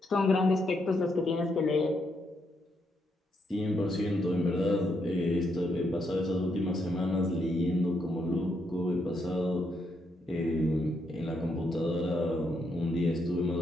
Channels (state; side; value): normal; both; correlation 0.78